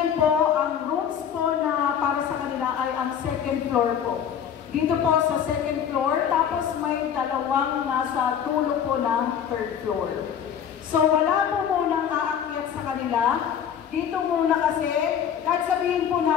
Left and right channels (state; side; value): quieter; right; 8.5 dB